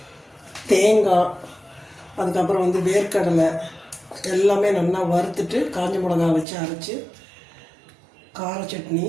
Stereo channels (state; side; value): drops out; left; at 6.5 s